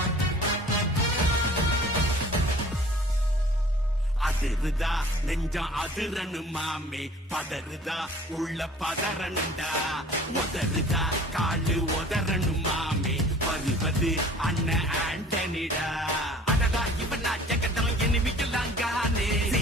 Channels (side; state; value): both; normal; correlation 0.48